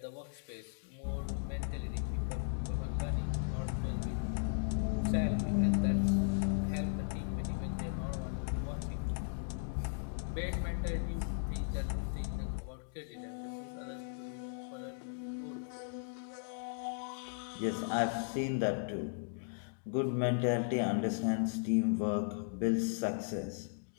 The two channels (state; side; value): silent; right; digital silence